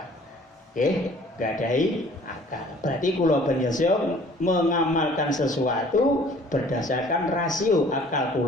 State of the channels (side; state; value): both; normal; correlation 0.53